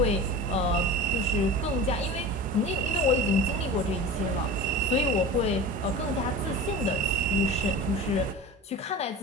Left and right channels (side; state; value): both; normal; correlation 0.33